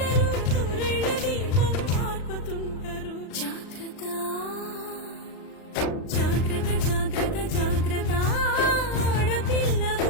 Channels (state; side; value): late; right; 39 ms